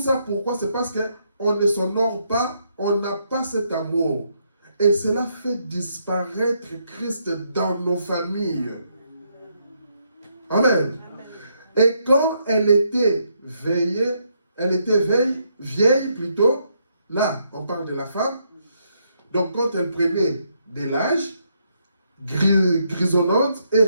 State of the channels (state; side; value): inverted; both; correlation -0.76